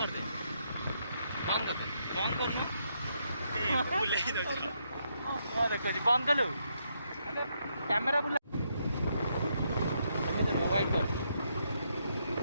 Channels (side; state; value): both; inverted; correlation -0.78